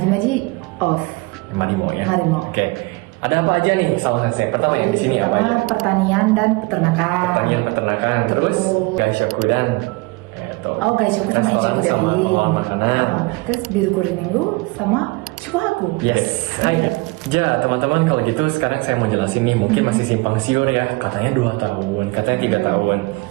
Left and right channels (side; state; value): left; quieter; 25.0 dB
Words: off. Marimo ya. Marimo. Oke. Ada apa aja nih Salma Sensei? Pertama yang di sini apa aja? Pertanian dan peternakan. Pertanian, peternakan, terus gaishoku dan Oh guys, aku sama Ichigo sama dari pengolahan makanan. Terus biru kuring minggu sama Shuhaku. Yes. Hai. Ja, teman-teman, kalau gitu sekarang saya mau jelasin nih, mungkin masih simpang siur ya. Katanya 2 tahun, katanya 3 tahun.